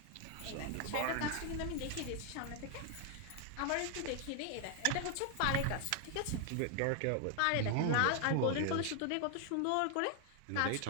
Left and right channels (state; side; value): different; both; correlation 0.00